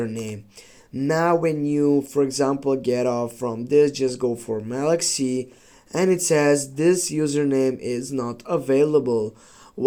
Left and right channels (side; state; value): both; identical; correlation 1.00